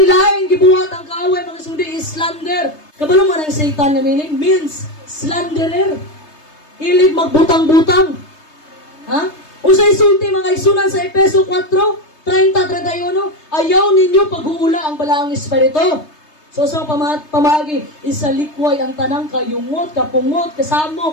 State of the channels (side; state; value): right; late; 3.3 ms